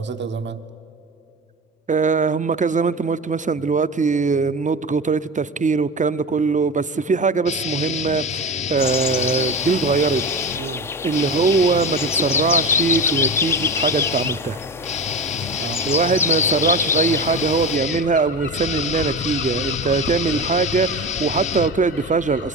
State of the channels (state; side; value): normal; both; correlation 0.26